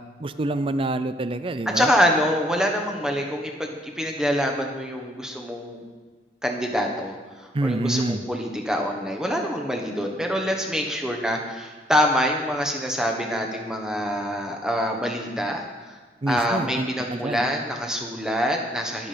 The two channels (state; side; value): normal; both; correlation 0.67